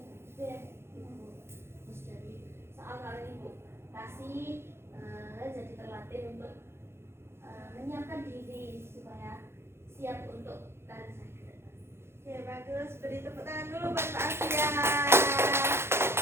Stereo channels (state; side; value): late; left; 0.12 ms